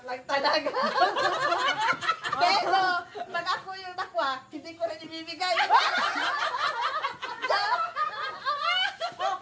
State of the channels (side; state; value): both; identical; correlation 1.00